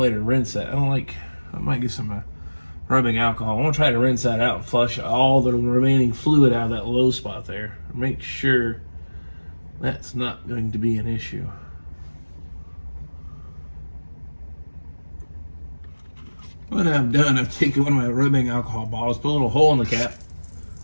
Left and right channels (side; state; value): both; inverted; correlation -1.00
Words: to rinse that. I might get some rubbing alcohol. I want to try to rinse that out and flush all the remaining fluid out of that low spot there. Make sure that's not going to be an issue. What I've done, I've taken one of my rubbing alcohol bottles, put a little hole in the cap,